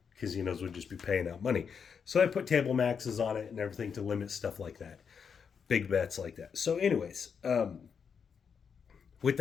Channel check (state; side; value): quieter; right; 6.6 dB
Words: casinos would just be paying out money. So I put table maxes on it and everything to limit stuff like that, big bets like that. So anyways, with